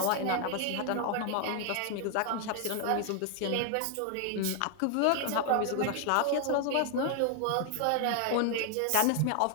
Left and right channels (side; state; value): both; different; correlation 0.00